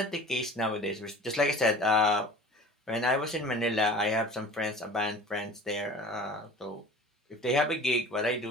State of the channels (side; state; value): both; normal; correlation 0.42